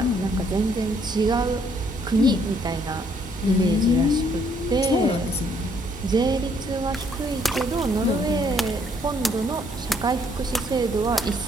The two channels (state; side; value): normal; both; correlation 0.67